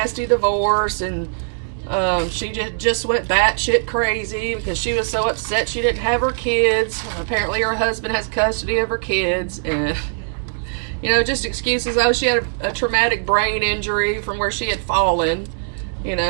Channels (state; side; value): silent; left; digital silence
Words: divorce, and she just went batshit crazy because she was so upset she didn't have her kids. Apparently her husband has custody of her kids, and, you know, just excuses. Oh, she had a traumatic brain injury from where she had fallen, you